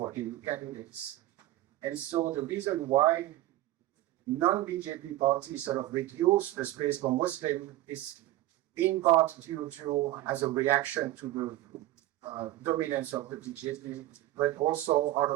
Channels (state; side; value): quieter; left; 15.7 dB